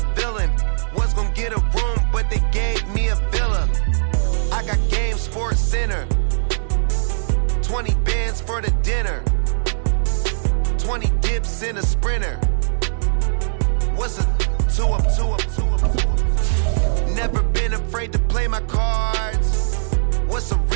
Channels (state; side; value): silent; left; digital silence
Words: villain. Was gonna get a room, but they gave me a villa. I got Game Sports Center. 20 bands for the dinner. 20 dips in a sprinter. What's a 2 up, 2 up, 2 up, 2 up? Never been afraid to play my cards. What's a